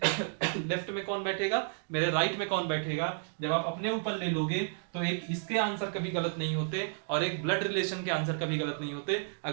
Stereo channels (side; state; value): left; silent; digital silence